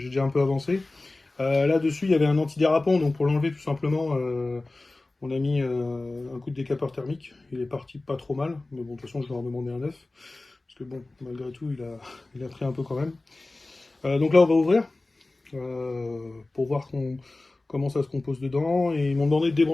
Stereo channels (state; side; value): quieter; right; 3.0 dB